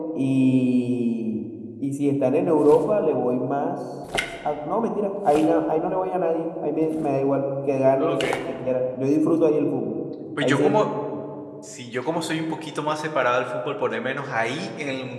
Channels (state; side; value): identical; both; correlation 1.00